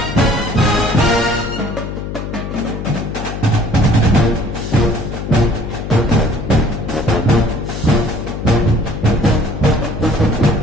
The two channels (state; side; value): noise; left; hum, 7 dB below the sound